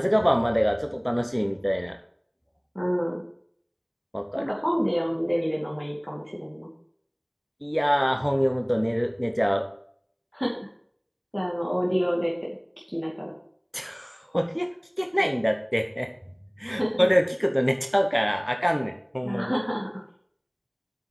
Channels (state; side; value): identical; both; correlation 1.00